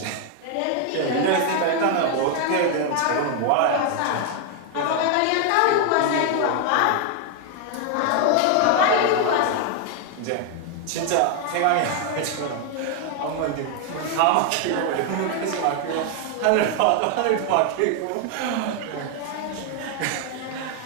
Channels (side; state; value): both; different; correlation 0.00